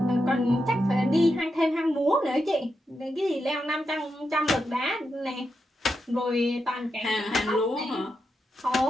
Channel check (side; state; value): both; normal; correlation 0.86